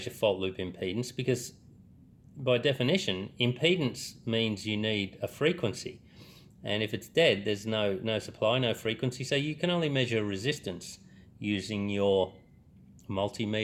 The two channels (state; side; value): identical; both; correlation 1.00